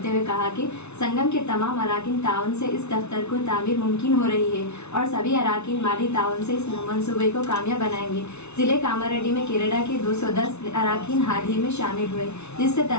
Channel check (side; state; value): right; late; 0.81 ms